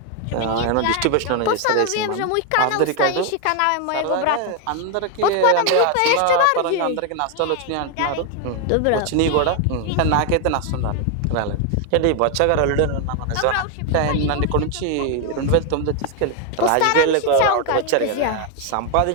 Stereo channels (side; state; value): both; different; correlation 0.01